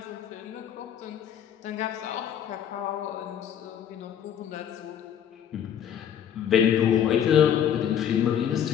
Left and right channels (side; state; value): right; quieter; 9.3 dB